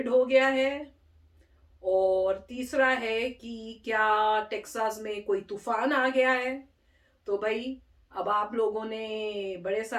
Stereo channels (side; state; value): both; identical; correlation 1.00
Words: हो गया है। और तीसरा है कि क्या टेक्सास में कोई तूफान आ गया है। तो भाई, अब आप लोगों ने बड़े